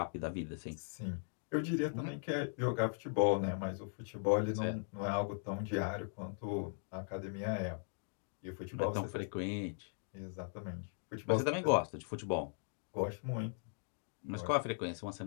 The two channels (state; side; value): silent; right; digital silence